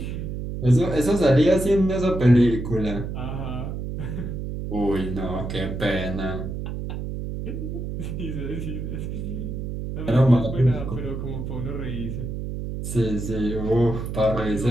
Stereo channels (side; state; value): right; noise; hum, 5 dB below the sound